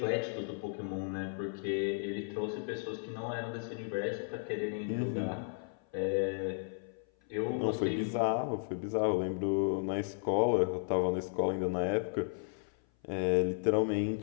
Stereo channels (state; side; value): silent; right; 55 dB below the other